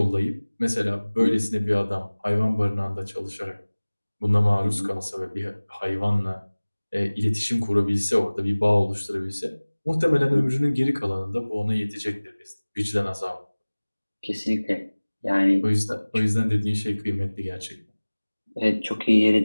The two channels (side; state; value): both; inverted; correlation -1.00